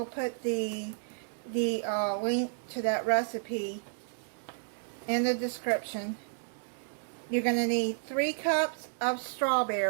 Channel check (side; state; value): left; silent; digital silence